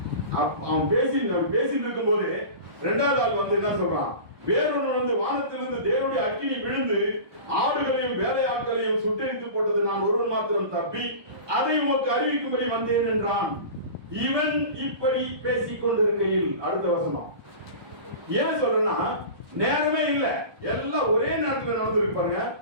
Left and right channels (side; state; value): left; late; 1.2 ms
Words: அவன் பேசிட்டு இருக்கும் போது 2வது ஆள் வந்து என்ன சொல்றான்? வேறொன்று வந்து வானத்திலிருந்து தேவனுடைய அக்கினி விழுந்து ஆடுகளையும் வேலையாட்களையும் சுட்டெரித்து போட்டது. நான் ஒருவன் மாத்திரம் தப்பி அதை உமக்கு அறிவிக்கும்படி வந்தேன் என்றான். இவன் இப்படி பேசிக் கொண்டிருக்கையில், அடுத்த வசனம் ஏன் சொல்றேன்னா, நேரமே இல்ல, எல்லாம் ஒரே நேரத்தில் நடந்திருக்கு. பாருங்க,